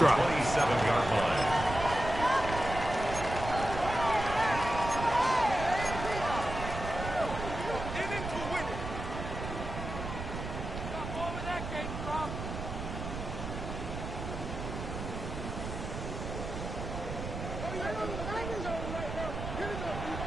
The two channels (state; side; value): noise; right; rumble, 6 dB below the sound